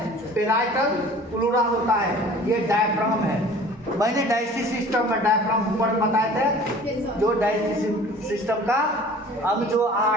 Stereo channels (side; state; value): both; normal; correlation 0.46